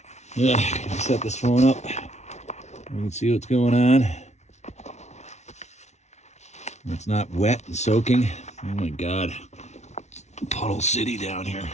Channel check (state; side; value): late; right; 0.32 ms